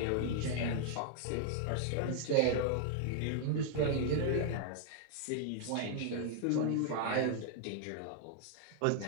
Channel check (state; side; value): different; both; correlation 0.00